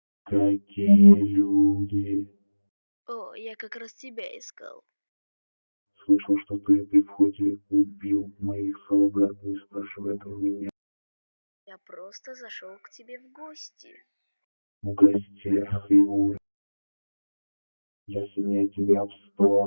Какие люди? О, я как раз тебя искал. Слышал, что ты при входе убил моих солдат, не спрашивая про меня. Я просто зашел к тебе в гости. В гостях и ур. Я сильнее тебя в 100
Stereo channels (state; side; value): inverted; both; correlation -1.00